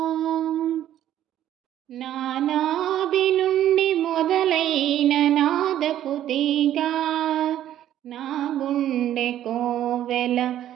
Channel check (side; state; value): left; quieter; 11.9 dB